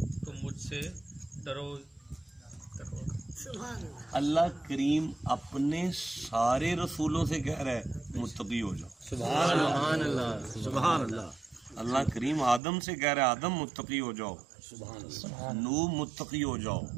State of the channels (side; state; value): left; drops out; at 12.6 s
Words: تم مجھ سے ڈرو. اللہ کریم اپنے سارے رسولوں سے کہہ رہا ہے متقی ہو جاؤ. سبحان اللہ سبحان اللہ. اللہ کریم آدم سے کہہ رہا ہے آدم متقی ہو جاؤ. نوح متقی ہو جاؤ.